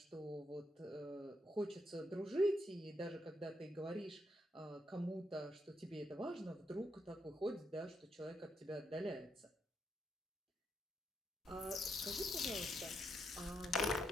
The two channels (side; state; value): both; normal; correlation 0.79